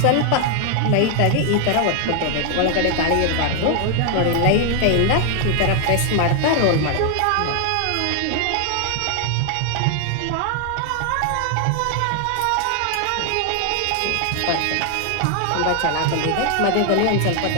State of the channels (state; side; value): different; both; correlation 0.00